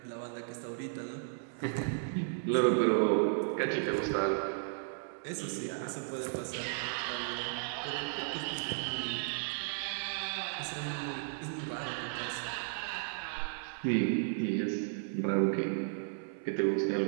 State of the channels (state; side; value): silent; left; 55 dB below the other